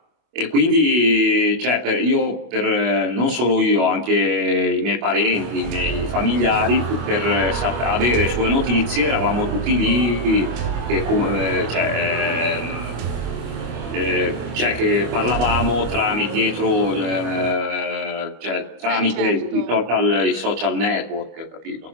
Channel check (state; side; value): late; left; 25 ms